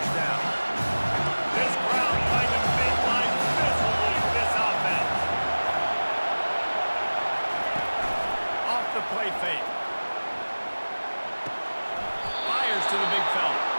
down. This crowd trying to make life miserable for this offense. Off the play fake. Fires to the big fella.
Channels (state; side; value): inverted; both; correlation -1.00